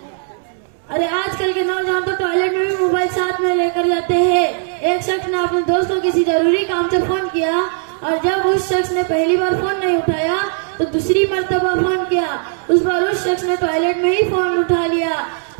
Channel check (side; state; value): left; silent; 66 dB below the other